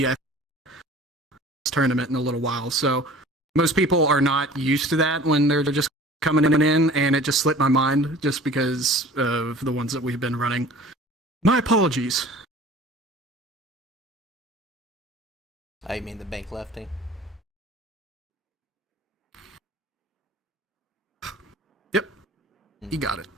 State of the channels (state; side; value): normal; both; correlation 0.45